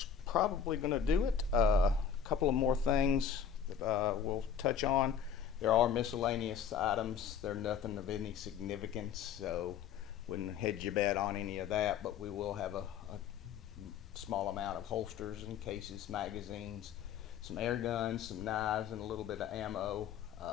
probably going to do it. Couple of more things that we'll touch on. There are miscellaneous items. They're nothing of any significance, so wouldn't hedge your bet on any of that, but we will have a small amount of holsters and cases, magazines, some air guns, some knives, and a little bit of ammo.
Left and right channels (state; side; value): quieter; right; 7.6 dB